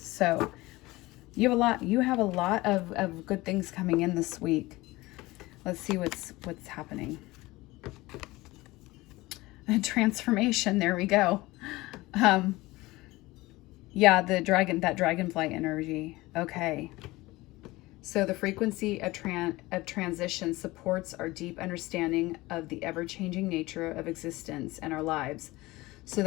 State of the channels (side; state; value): right; quieter; 20.1 dB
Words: you have a lot of good things coming in this week. Let's see what's happening. A transformation, there we go. Yeah, that dragonfly energy. Okay. So the frequency of transition supports our deep understanding of the ever-changing nature of existence and our lives, so